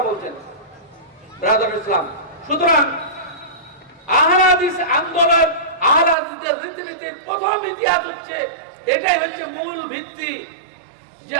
বলছেন। ব্রাদার ইসলাম, সুতরাং আহলে হাদিস আন্দোলন, আহলে হাদিসদের রীতিনীতির প্রথম ইতিহাস হচ্ছে, এটাই হচ্ছে মূল ভিত্তি যে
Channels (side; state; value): left; drops out; at 6.2 s